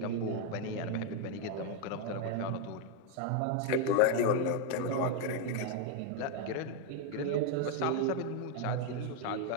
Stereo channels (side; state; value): both; different; correlation 0.01